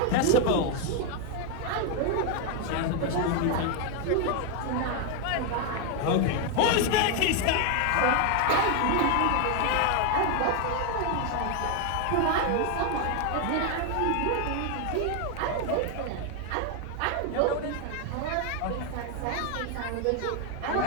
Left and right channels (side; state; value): both; different; correlation 0.01